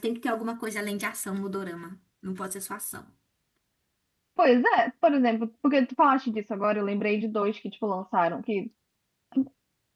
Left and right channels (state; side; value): identical; both; correlation 1.00